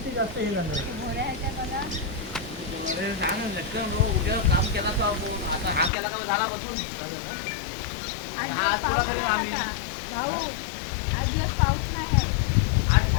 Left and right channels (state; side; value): drops out; right; at 5.9 s